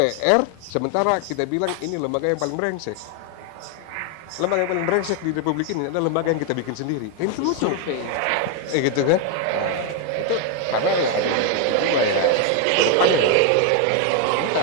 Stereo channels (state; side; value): different; both; correlation 0.01